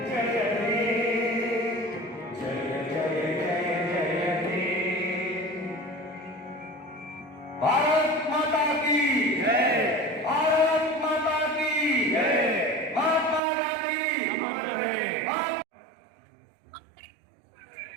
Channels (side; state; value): left; drops out; at 13.4 s